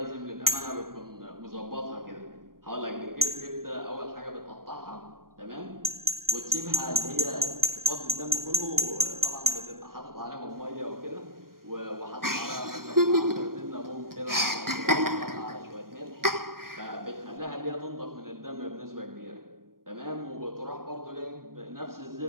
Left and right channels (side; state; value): left; late; 0.92 ms